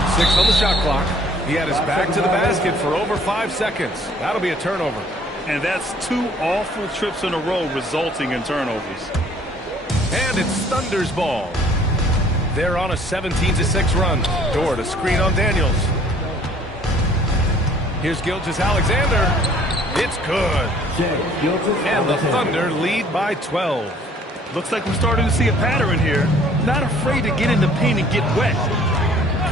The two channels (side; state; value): both; normal; correlation 0.57